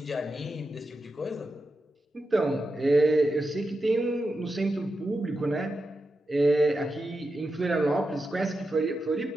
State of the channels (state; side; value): normal; both; correlation 0.89